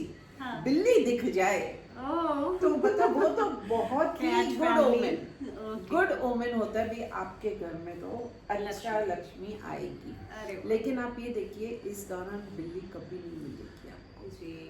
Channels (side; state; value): both; identical; correlation 1.00